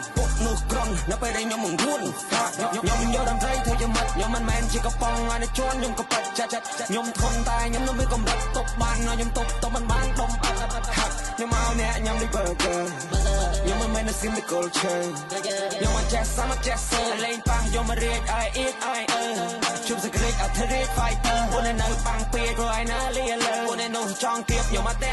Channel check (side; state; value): both; identical; correlation 1.00